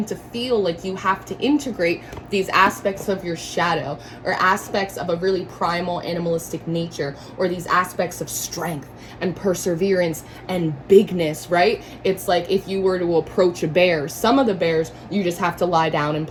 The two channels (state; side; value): identical; both; correlation 1.00